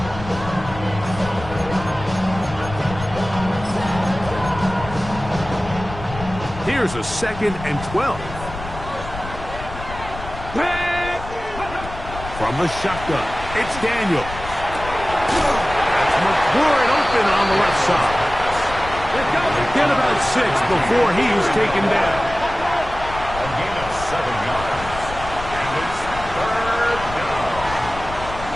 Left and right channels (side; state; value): left; noise; rumble, 11 dB below the sound